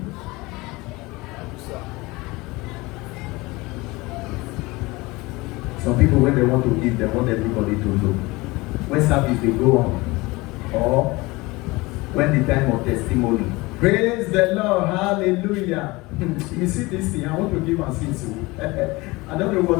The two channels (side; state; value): right; quieter; 22.5 dB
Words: Some people, when they want to give, they want everybody to know. When service they go on, or when the time of testimony. Praise the Lord, hallelujah. You see this thing, I want to give and see so. I don't know what